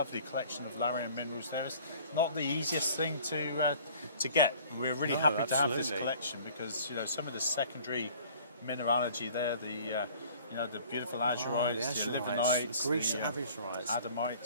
collection of Larium minerals there. It's not the easiest thing to get. We're really happy to have this collection because some of the secondary mineralogy there, the beautiful azurites, the livenites, the Greece azurites,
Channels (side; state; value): both; inverted; correlation -0.51